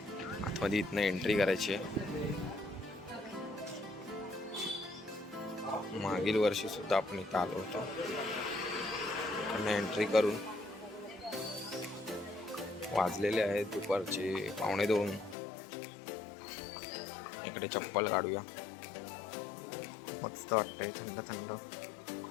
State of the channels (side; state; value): right; drops out; at 15.4 s